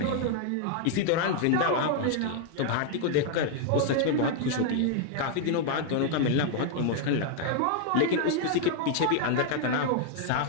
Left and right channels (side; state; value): both; different; correlation 0.00